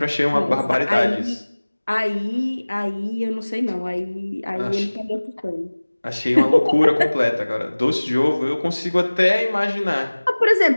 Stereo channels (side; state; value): both; inverted; correlation -1.00